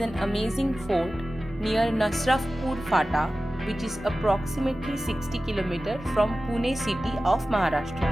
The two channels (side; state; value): both; normal; correlation 0.95